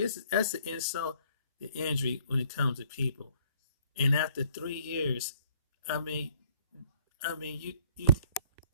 an insult to injury when it comes to people. And after 3 years, I mean, you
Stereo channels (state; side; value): inverted; both; correlation -0.61